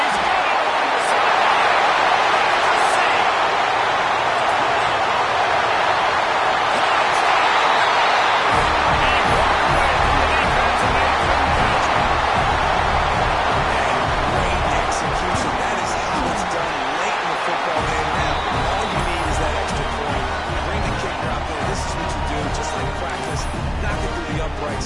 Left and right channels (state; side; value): identical; both; correlation 1.00